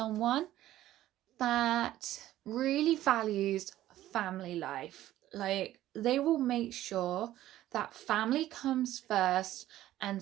that really values family life. Like, they will make sure that family comes first, and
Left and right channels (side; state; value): left; quieter; 14.0 dB